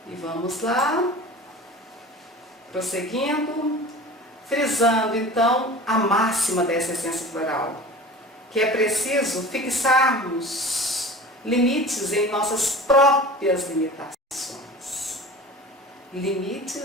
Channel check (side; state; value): both; normal; correlation 0.37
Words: E vamos lá, prosseguindo, frisando então a máxima dessa essência floral, que é preciso fixarmos limites em nossas próprias limitações.